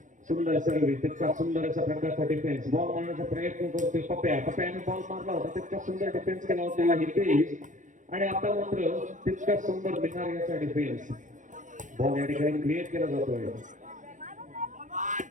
सुंदर सर्व्हिस, तितका सुंदर अशा प्रकारचा डिफेन्स, बॉल मारण्याचा प्रयत्न करतोय पप्याने बॉल मारला होता, तितका सुंदर डिफेन्स केला होता हितेश आणि आता मात्र तितका सुंदर बिहारियाचा डिफेन्स. बॉल या ठिकाणी क्लिअर केला जातोय.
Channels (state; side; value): late; left; 0.37 ms